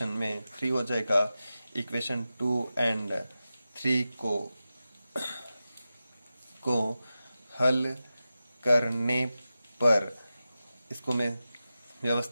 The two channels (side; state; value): both; inverted; correlation -0.93